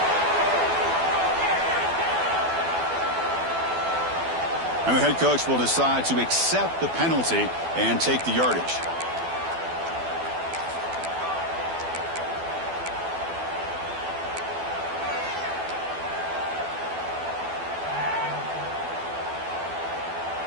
And the head coach will decide to accept the penalty and take the yardage.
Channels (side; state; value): left; late; 12 ms